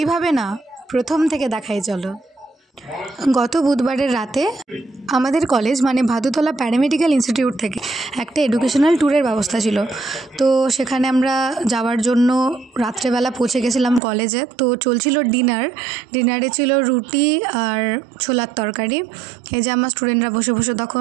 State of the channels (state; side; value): drops out; left; at 14.0 s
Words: না, প্রথম থেকে দেখাই চলো। গত বুধবারের রাতে আমাদের কলেজ মানে ভাদুতলা প্যারামেডিক্যাল ইনস্টিটিউট থেকে একটা এডুকেশনাল ট্যুরের ব্যবস্থা ছিল। তো সেখানে আমরা যাওয়ার জন্য রাত্রেবেলা পৌঁছে গেছিলাম কলেজে। তো চলছিল ডিনারে ছিল রুটি আর ছোলার তরকারি। এই যে আমার স্টুডেন্টরা বসে বসে